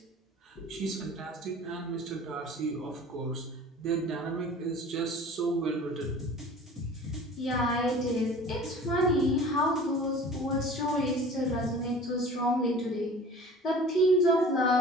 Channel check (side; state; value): both; normal; correlation 0.43